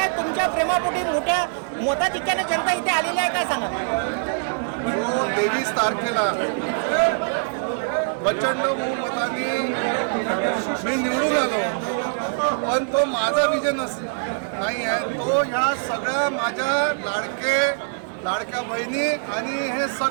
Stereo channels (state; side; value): silent; left; digital silence